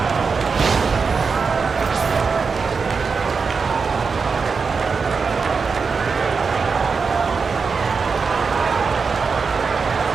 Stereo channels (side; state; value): left; quieter; 5.1 dB